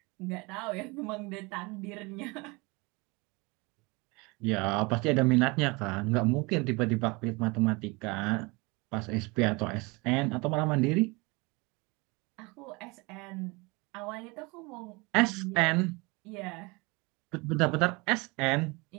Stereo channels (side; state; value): left; quieter; 26.4 dB